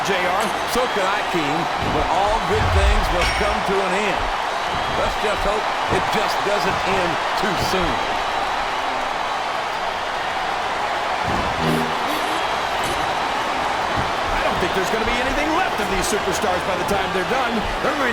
JR. So could I, King, but all good things must come to an end. Let's just hope it just doesn't end too soon. I don't think there's going to be anything left of these superstars by the time they're done. There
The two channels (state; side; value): identical; both; correlation 1.00